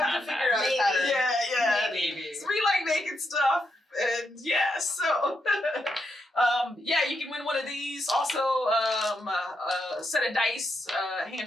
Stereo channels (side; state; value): both; normal; correlation 0.82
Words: to figure out a pattern. Yeah. Maybe. So we like making stuff, and yeah, so yeah, you can win one of these. Also, a set of dice, a